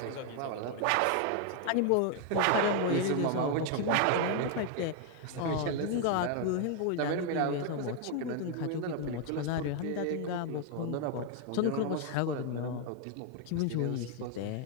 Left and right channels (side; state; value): both; different; correlation 0.00